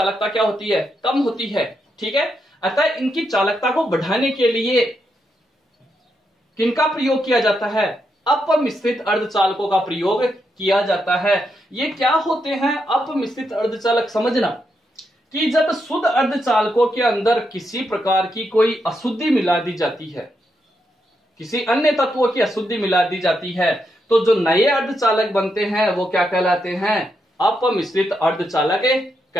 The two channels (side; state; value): both; normal; correlation 0.82